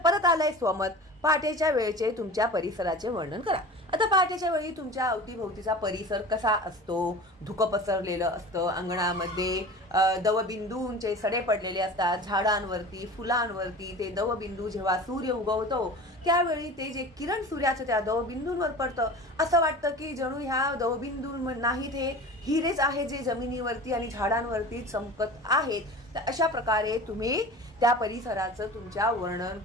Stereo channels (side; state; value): both; normal; correlation 0.36